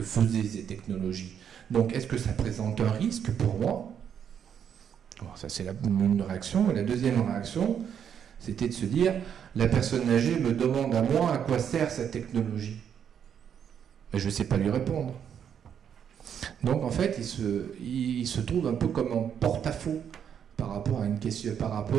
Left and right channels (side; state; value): left; quieter; 8.3 dB